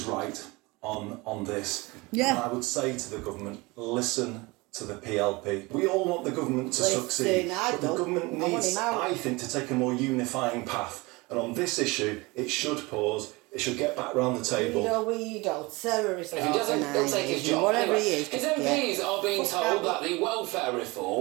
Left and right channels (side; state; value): left; quieter; 24.1 dB